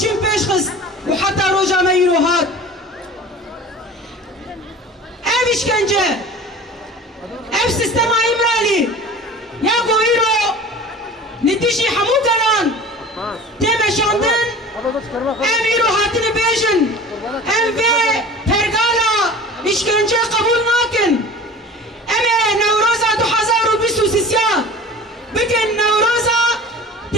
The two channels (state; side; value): normal; both; correlation 0.39